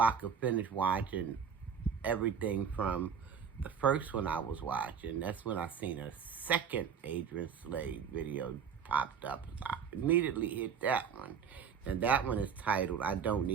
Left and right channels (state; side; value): quieter; left; 7.1 dB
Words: I could finish watching everything from the first one I was watching, that's when I seen a second Adrienneslays video popped up. I immediately hit that one. And that one is titled, I Don't